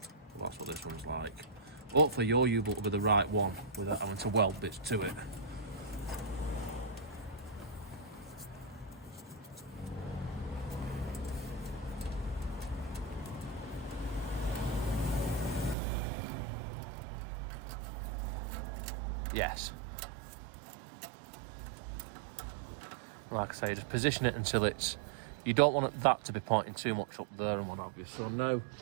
but that's what this one's like. Hopefully your U-bolt will be the right one without having to weld bits to it. Yes. Like I say, just position it until it's, you don't want that to be pointing too much up there and what have you. So now,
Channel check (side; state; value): left; drops out; at 15.8 s